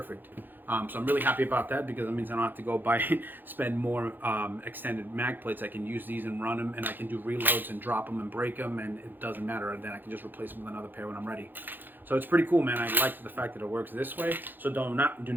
So I'm really happy about that because it means I don't have to go spend more extended mag plates. I can use these and run them, and I can do reloads and drop them and break them, and it doesn't matter. And then I can just replace them with another pair when I'm ready. So it's pretty cool, man. I like the fact that it works this way. So do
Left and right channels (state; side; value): late; left; 0.091 ms